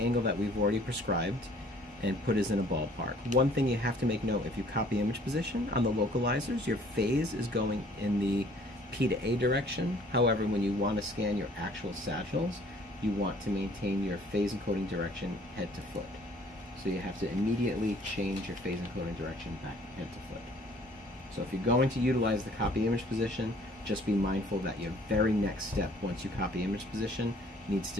that we've already prescribed and put us in a ballpark. One thing you have to make note, if you copy image position on the localizers, your phase is going in the P to A direction. However, when you want to scan your actual sagittals, you want to maintain your phase encoding direction head to foot. So you have to immediately change your phase encoding direction back head to foot. So if you're going to utilize the copy image position, just be mindful that your very next step once you copy image position needs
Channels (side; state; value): both; normal; correlation 0.56